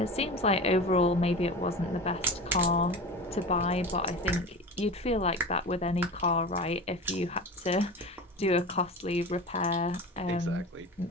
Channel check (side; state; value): both; normal; correlation 0.31